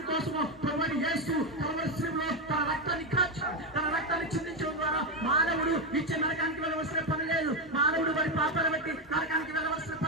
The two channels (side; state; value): both; normal; correlation 0.08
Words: ప్రభువైన యేసు కల్వరి శిలువలో తన రక్తాన్ని కాచాడు. తన రక్తాన్ని చిందించడం ద్వారా మానవుడు నిత్య నరకానికి వెళ్ళవలసిన పని లేదు. మానవుడు వారి పాపాలను బట్టి నరకానికి వెళ్ళవలసిన